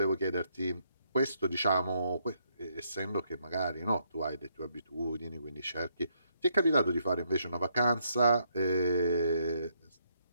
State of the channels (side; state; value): both; inverted; correlation -0.74